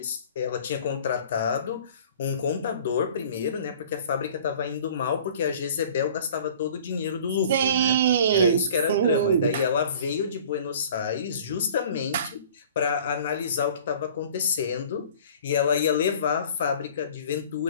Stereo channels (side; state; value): both; inverted; correlation -0.47